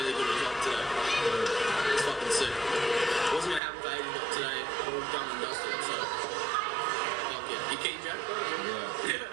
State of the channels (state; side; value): drops out; left; at 3.6 s